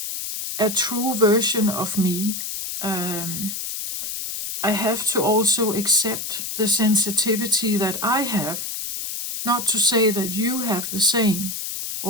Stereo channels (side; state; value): left; noise; hiss, 5 dB below the sound